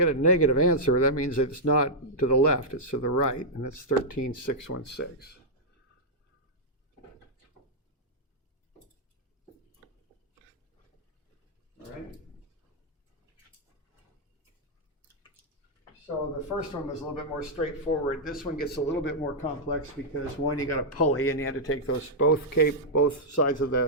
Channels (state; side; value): normal; both; correlation -0.07